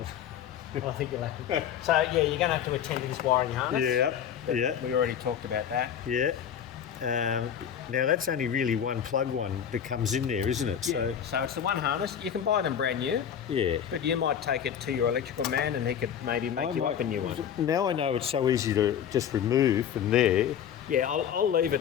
I think you'll have to. So yeah, you're going to have to attend to this wiring harness. yeah. We already talked about that. Yeah. Now that's only really one plug one that comes in there, isn't it? So So it's the one harness. You can buy them brand new, yeah. but you might take it to your electrical man, and he could maybe make you up a new one. Now I know it's so easy to just remove from there. Yeah, I'll leave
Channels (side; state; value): right; quieter; 8.8 dB